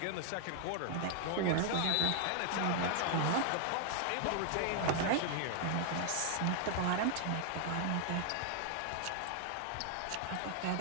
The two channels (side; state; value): both; different; correlation -0.01